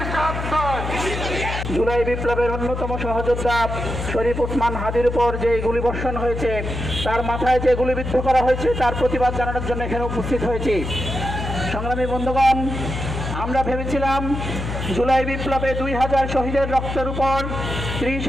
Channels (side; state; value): left; noise; hum, 5 dB below the sound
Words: জুলাই বিপ্লবের অন্যতম সহযোদ্ধা শরীফ ওসমান হাদির উপর যে গুলিবর্ষণ হয়েছে, তার মাথায় যে গুলিবিদ্ধ করা হয়েছে, তার প্রতিবাদ জানানোর জন্য এখানে উপস্থিত হয়েছি। সংগ্রামী বন্ধুগণ, আমরা ভেবেছিলাম জুলাই বিপ্লবে 2000 শহীদের রক্তের উপর,